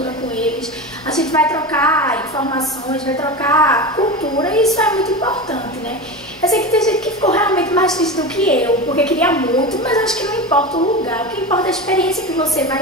com eles. A gente vai trocar informações, vai trocar cultura e isso é muito importante, né? Eu sei que tem gente que ficou realmente mais triste do que eu, porque queria muito, mas acho que não importa o lugar, o que importa é a experiência que você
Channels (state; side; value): normal; both; correlation 0.24